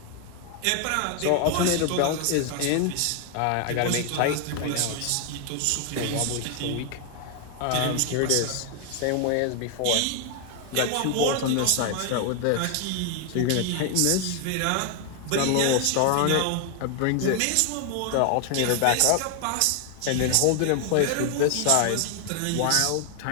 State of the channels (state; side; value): different; both; correlation 0.00